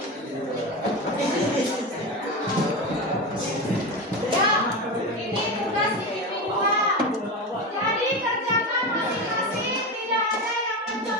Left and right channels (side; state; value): both; normal; correlation 0.21